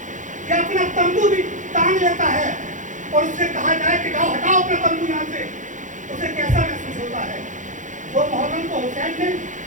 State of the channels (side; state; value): left; late; 0.37 ms